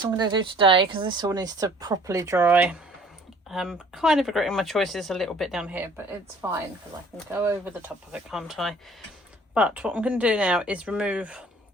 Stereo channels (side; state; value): both; normal; correlation 0.54